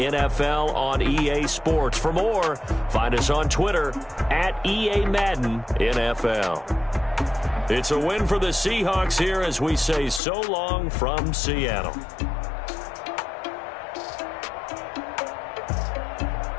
on EA Sports. For more, find us on Twitter at EA Madden NFL. It's a win for the Seahawks here as we say so long from Seattle.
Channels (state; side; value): drops out; right; at 10.2 s